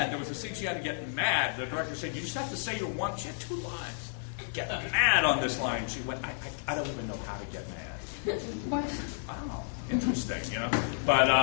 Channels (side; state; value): right; silent; digital silence